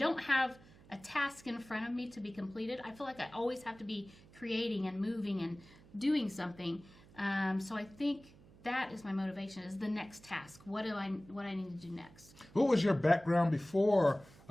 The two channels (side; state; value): right; noise; hum, 23 dB below the sound